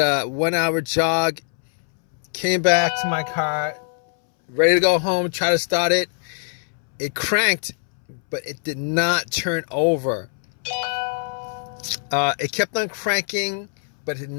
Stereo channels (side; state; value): right; silent; 64 dB below the other